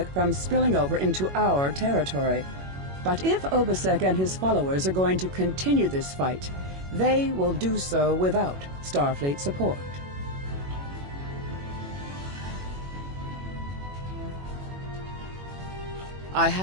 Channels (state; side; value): late; left; 21 ms